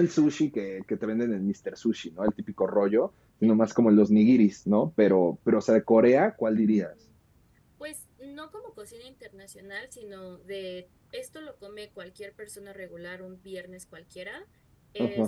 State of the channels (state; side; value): identical; both; correlation 1.00